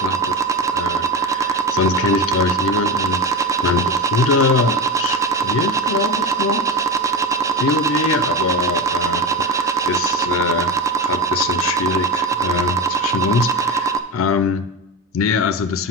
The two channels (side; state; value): both; normal; correlation 0.22